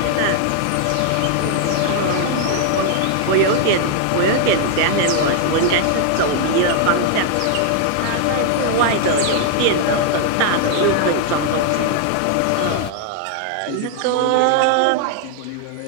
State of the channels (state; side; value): different; both; correlation 0.00